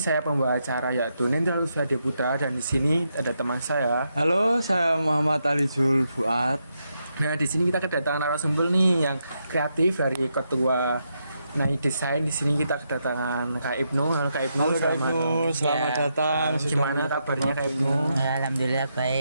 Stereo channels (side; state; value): both; inverted; correlation -0.82